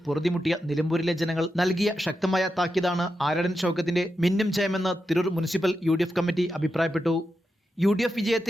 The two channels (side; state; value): both; normal; correlation 0.88